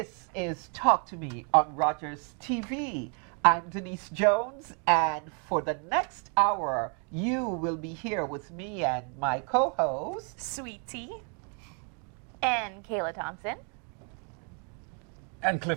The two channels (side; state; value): left; quieter; 38.7 dB